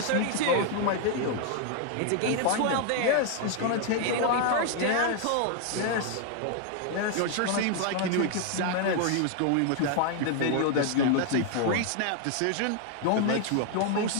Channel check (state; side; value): different; both; correlation 0.00